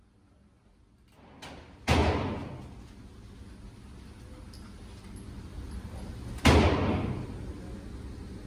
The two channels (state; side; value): identical; both; correlation 1.00